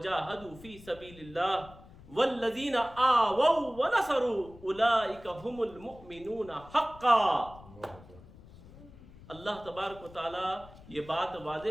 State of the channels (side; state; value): left; noise; rumble, 20 dB below the sound